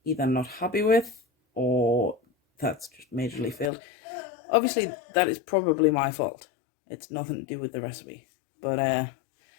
either not happy with or that's just majorly failed. Obviously, that is probably my fault. It's nothing to do with the recipe. But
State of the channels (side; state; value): right; drops out; at 3.7 s